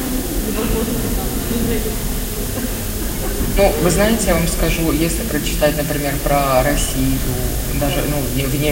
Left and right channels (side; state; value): both; identical; correlation 1.00